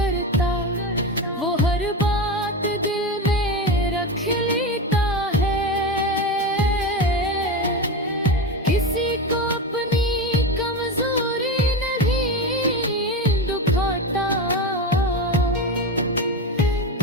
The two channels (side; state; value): both; normal; correlation 0.20